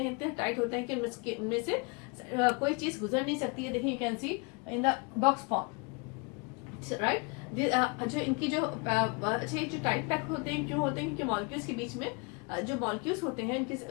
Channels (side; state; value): right; quieter; 31.1 dB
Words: इतने टाइट होते हैं कि उनमें से कोई चीज गुजर नहीं सकती है। देखिए, you can see in the box form, right. जो इनकी जो अच्छे जो टाइट पैक होते हैं, क्यों होते हैं? क्योंकि मॉलिक्यूल्स के बीच में जो मॉलिक्यूल्स होते हैं